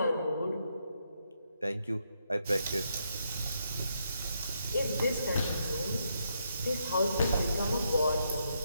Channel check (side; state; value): both; inverted; correlation -0.78